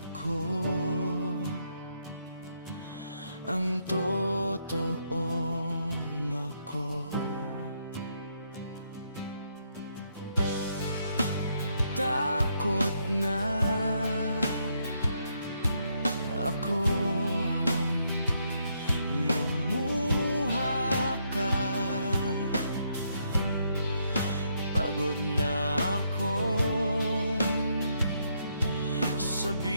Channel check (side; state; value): both; inverted; correlation -0.76